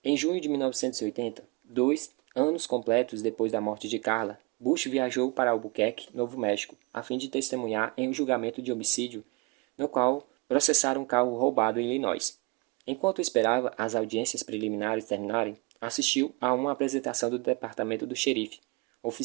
Em junho de 1980, dois Anos completos depois da morte de Carla, Bush viajou para Albuquerque, Novo México, a fim de testemunhar em um julgamento de homicídio, no qual processaram um carro roubado em Illinois. Enquanto esperava as audiências preliminares terminarem, assistiu a uma apresentação do departamento do xerife,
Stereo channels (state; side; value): quieter; left; 25.9 dB